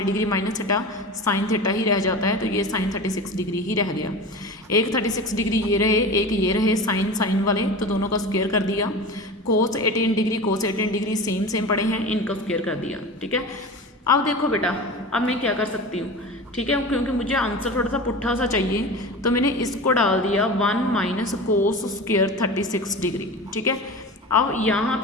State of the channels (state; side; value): normal; both; correlation 0.31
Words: degree minus theta sine theta ही रह जाता है, तो ये साइन 36 डिग्री ही रह गया। एक 36 डिग्री ये रहे, एक ये रहे साइन साइन वाले, तो दोनों का स्क्वायर कर दिया। कोस 18 डिग्री कोस 18 डिग्री सेम पड़े हैं, इनका स्क्वायर कर दिया, ठीक है। अब देखो बेटा, अब मैं क्या कर सकती हूँ, ठीक है, क्योंकि मुझे आंसर थोड़ा सा पुट्ठा सा चाहिए, तो मैंने इसको डाल दिया 1 माइनस कोस स्क्वायर 36 डिग्री, ठीक है। अब यहाँ